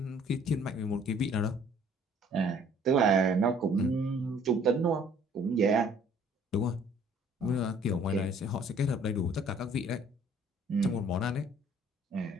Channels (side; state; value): both; normal; correlation 0.57